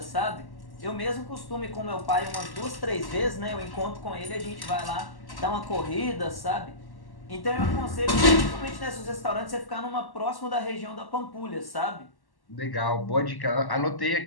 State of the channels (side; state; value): right; late; 1.1 ms